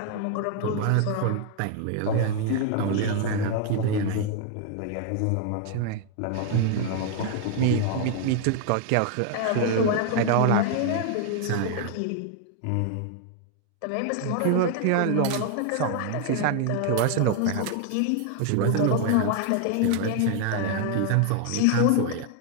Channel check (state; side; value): different; both; correlation 0.00